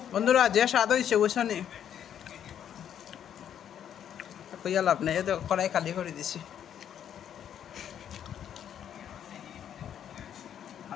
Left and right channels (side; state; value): right; quieter; 9.5 dB